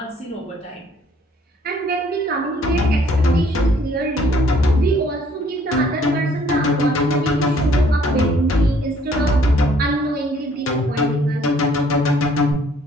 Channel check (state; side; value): normal; both; correlation 0.61